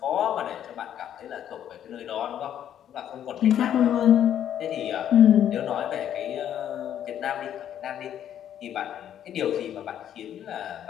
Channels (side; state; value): right; quieter; 10.2 dB